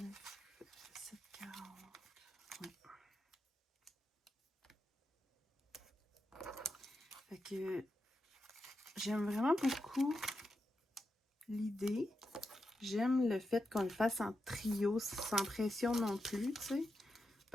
740. Ouais. Fait que j'aime vraiment beaucoup l'idée. J'aime le fait qu'on le fasse en trio, sans pression non plus, tu sais.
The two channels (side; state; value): both; normal; correlation 0.87